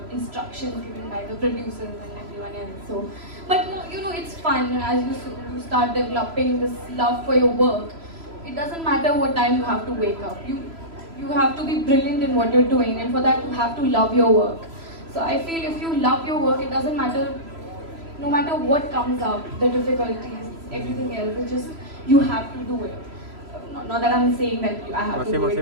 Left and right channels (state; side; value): late; left; 3.0 ms